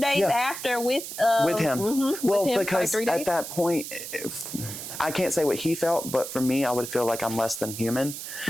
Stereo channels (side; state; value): right; noise; hiss, 8 dB below the sound